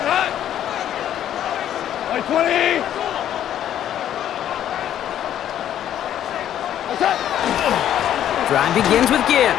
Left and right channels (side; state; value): right; quieter; 10.9 dB